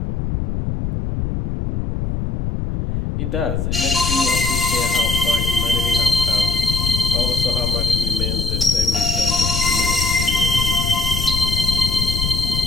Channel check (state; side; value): noise; left; rumble, 2 dB below the sound